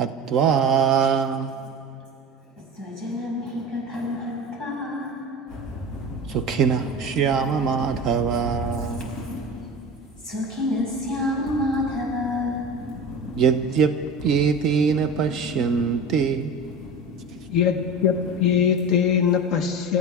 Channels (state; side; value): normal; both; correlation 0.31